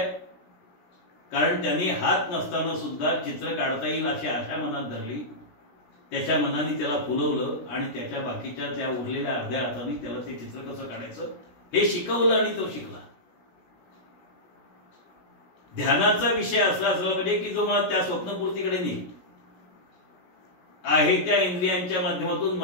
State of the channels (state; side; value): late; right; 16 ms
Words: कारण त्यांनी हात नसताना सुद्धा चित्र काढता येईल अशी आशा मनात धरली. त्याच्या मनाने त्याला फुलवलं आणि त्याच्या बाकीच्या त्या उरलेल्या अर्ध्या हाताने त्याला ते चित्र कसं काढायचं हे शिकवलं आणि तो शिकला. ध्यानाचा विषय असला असला पाहिजे की जो मला त्या स्वप्नपूर्तीकडे नेईल. आहे त्या इंद्रियांच्या माध्यमातून